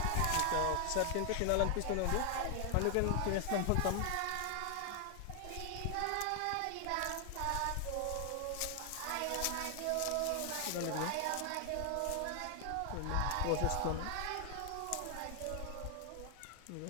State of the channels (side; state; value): both; different; correlation 0.00